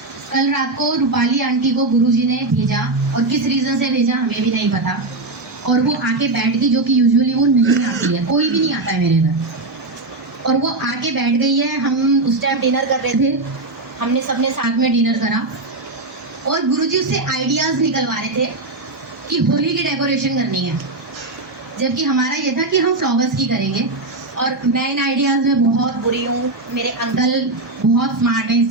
कल रात को रूपाली आंटी को गुरुजी ने भेजा, और किस रीजन से भेजा हमें भी नहीं पता। और वो आके बैठ गई, जो कि यूजुअली वो नहीं आती है, कोई भी नहीं आता है मेरे घर। और वो आके बैठ गई है। हम उस टाइम डिनर कर रहे थे, हमने सबने साथ में डिनर करा और गुरुजी उससे आइडियाज निकलवा रहे थे कि होली की डेकोरेशन करनी है, जबकि हमारा ये था कि हम फ्लावर्स की करेंगे। और मैं इन आइडियाज में बहुत बुरी हूँ। मेरे अंकल बहुत स्मार्ट हैं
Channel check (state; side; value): quieter; left; 3.1 dB